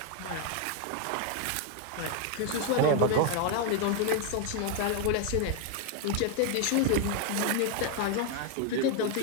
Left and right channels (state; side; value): different; both; correlation 0.01